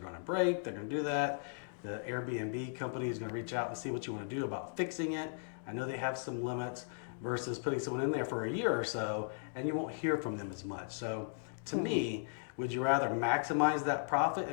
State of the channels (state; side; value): silent; right; digital silence